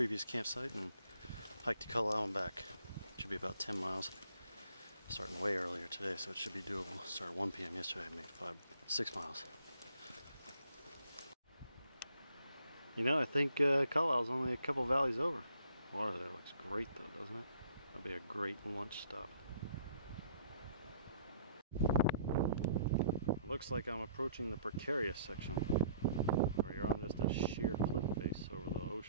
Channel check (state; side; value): inverted; both; correlation -0.61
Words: campsite and hike to Kalalau and back. Should be about 10 miles. Starting way earlier today, so it should be doable. Started at 1 p.m. yesterday, I made 6 miles. You know, I think Kalau's only a couple valleys over. Water there looks great though, doesn't it? That'll be a great lunch stop. Looks like I'm approaching the precarious section, where you're on just a sheer cliff face over the